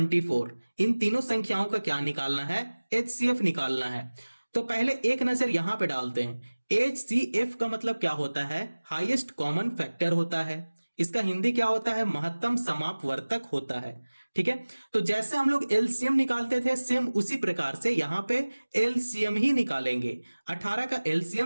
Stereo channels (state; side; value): inverted; both; correlation -1.00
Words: इन तीनों संख्याओं का क्या निकालना है, HCF निकालना है। तो पहले एक नजर यहां पे डालते हैं। HCF का मतलब क्या होता है? हाईएस्ट कॉमन फैक्टर होता है। इसका हिंदी क्या होता है? महत्तम समापवर्तक होता है। ठीक है, तो जैसे हम लोग एलसीएम निकालते थे, सेम उसी प्रकार से यहां पे एलसीएम ही निकालेंगे। 18 का